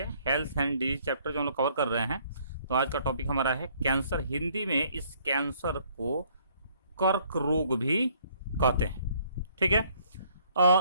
हेल्थ एंड डिजीज चैप्टर जो हम लोग कवर कर रहे हैं। तो आज का टॉपिक हमारा है कैंसर। हिंदी में इस कैंसर को कर्क रोग भी कहते हैं। ठीक है,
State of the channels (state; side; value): inverted; both; correlation -0.63